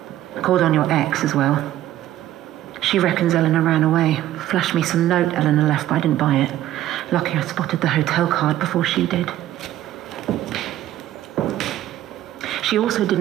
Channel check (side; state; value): left; quieter; 13.3 dB